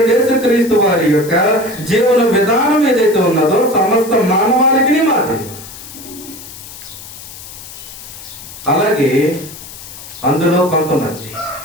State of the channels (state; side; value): noise; left; hiss, 15 dB below the sound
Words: యేసుక్రీస్తు వారి యొక్క జీవన విధానం ఏదైతే ఉన్నదో సమస్త మానవాళికి మాదిరి. అలాగే అందులో కొంతమంది,